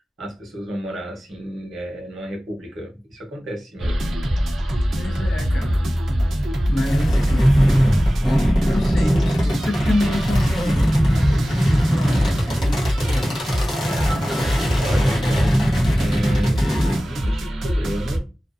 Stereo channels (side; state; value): both; normal; correlation 0.96